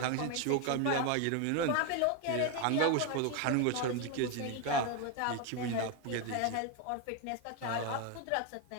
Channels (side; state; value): both; different; correlation 0.01